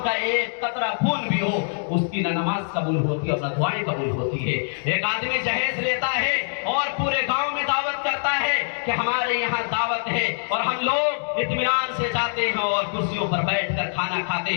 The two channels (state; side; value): silent; right; digital silence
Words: کا ایک قطرہ خون بھی ہو اس کی نہ نماز قبول ہوتی ہے اور نہ دعائیں قبول ہوتی ہے. ایک آدمی جہیز لیتا ہے اور پورے گاؤں میں دعوت کرتا ہے کہ ہمارے یہاں دعوت ہے, اور ہم لوگ اطمینان سے جاتے ہیں اور کرسیوں پر بیٹھ کر کھانا کھاتے